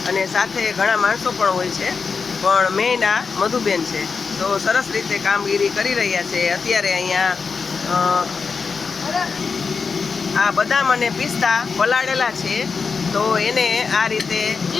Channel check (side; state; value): right; quieter; 5.1 dB